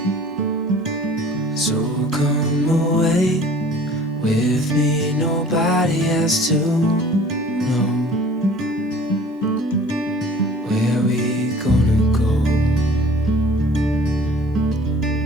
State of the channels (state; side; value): normal; both; correlation 0.48